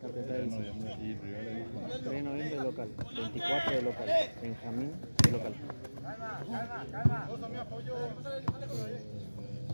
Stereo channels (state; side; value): inverted; both; correlation -1.00